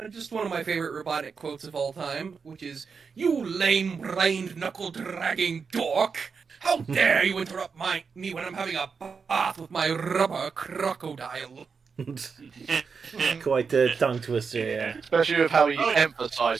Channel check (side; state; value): left; quieter; 5.5 dB